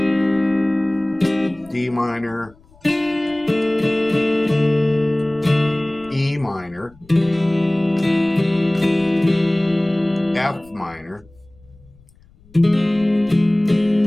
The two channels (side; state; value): left; noise; rumble, 28 dB below the sound